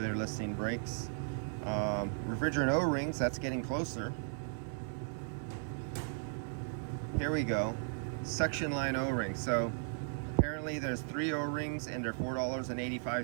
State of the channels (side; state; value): left; silent; 54 dB below the other